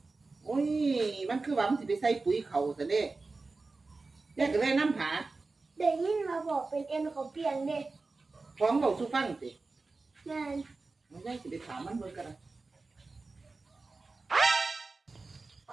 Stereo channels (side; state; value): left; quieter; 3.8 dB